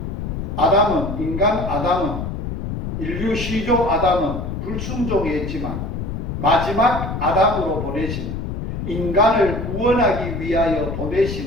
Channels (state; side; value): noise; left; rumble, 5 dB below the sound